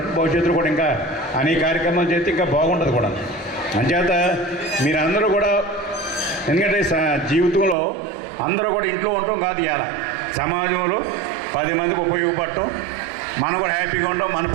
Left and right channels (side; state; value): left; drops out; at 7.8 s